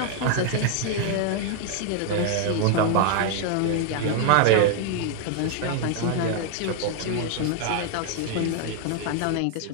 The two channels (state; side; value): different; both; correlation 0.00